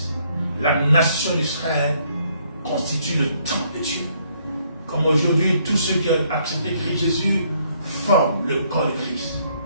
La nation d'Israël constitue le temple de Dieu. Comme aujourd'hui, tous ceux qui ont accepté Christ Jésus forment le corps de Christ.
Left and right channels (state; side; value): inverted; both; correlation -0.68